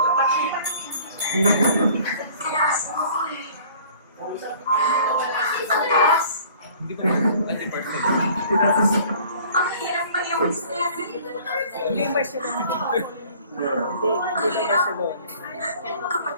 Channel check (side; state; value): both; inverted; correlation -0.51